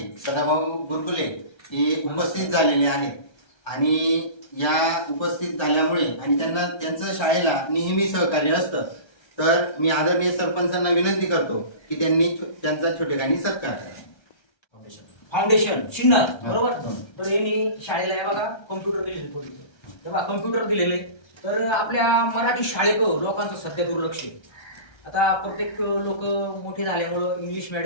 सदाभाऊ गुरकुले हे उपस्थित झालेले आहेत आणि या उपस्थित झाल्यामुळे आणि त्यांना त्यांचं शाळेला नेहमी सहकार्य असतं, तर मी आदरणीय सरपंचांना विनंती करतो की त्यांनी त्यांचा छोटेखानी सत्कार करावा. फाउंडेशन चिन्ह बरोबर. तर यांनी शाळेला या बघा कम्प्युटर दिलेले, थोडी तेव्हा कम्प्युटर दिलेले. तर आपल्या मराठी शाळेकडं लोकांचं सध्या दुर्लक्ष आहे. आता प्रत्येक लोक मोठे झाल्यामुळं इंग्लिश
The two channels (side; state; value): right; late; 1.3 ms